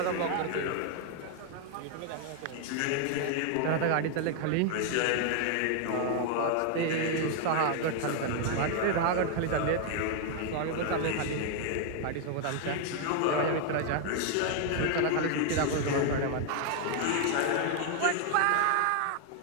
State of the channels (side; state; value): both; different; correlation 0.00